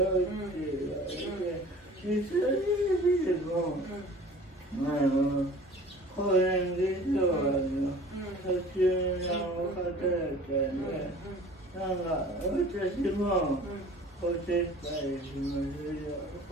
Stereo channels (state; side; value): normal; both; correlation 0.45